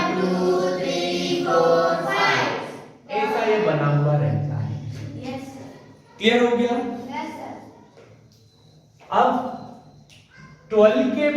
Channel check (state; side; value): identical; both; correlation 1.00